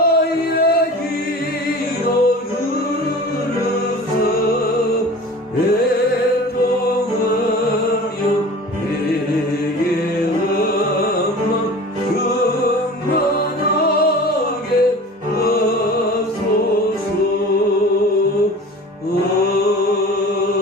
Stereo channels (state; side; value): normal; both; correlation 0.39